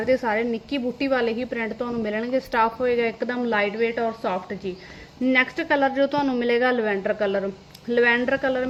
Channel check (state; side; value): identical; both; correlation 1.00